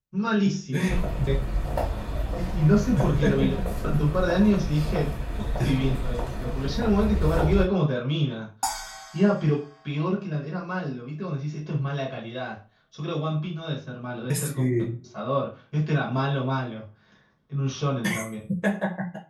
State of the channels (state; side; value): identical; both; correlation 1.00